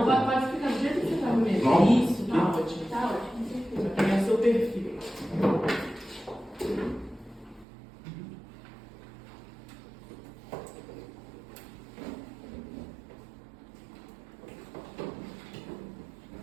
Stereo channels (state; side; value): drops out; left; at 7.7 s